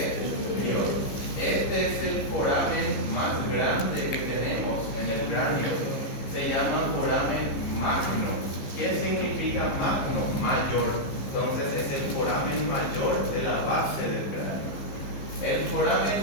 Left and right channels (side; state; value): right; late; 15 ms